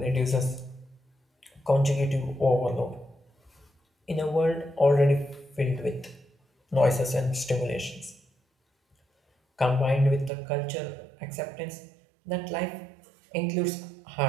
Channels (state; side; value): drops out; left; at 10.3 s